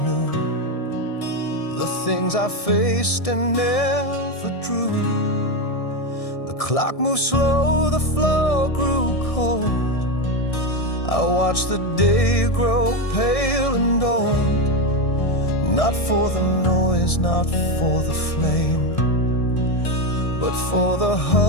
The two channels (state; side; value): late; right; 1.6 ms